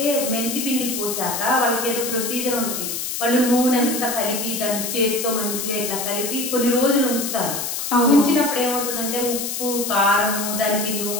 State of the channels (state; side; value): noise; left; hiss, 3 dB below the sound